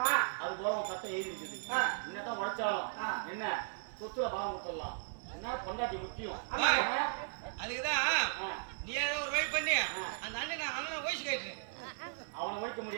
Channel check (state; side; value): silent; left; digital silence